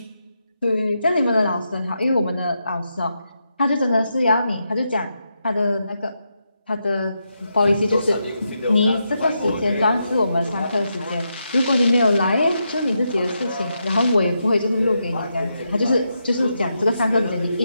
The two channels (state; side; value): inverted; both; correlation -0.84